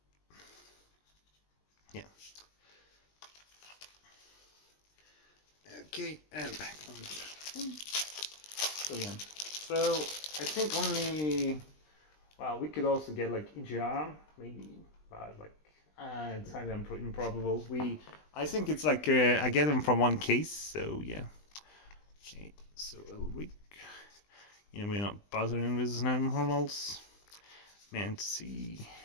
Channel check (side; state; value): right; late; 20 ms